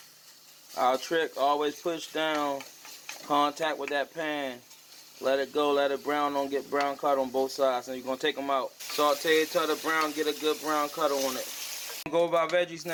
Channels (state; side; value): identical; both; correlation 1.00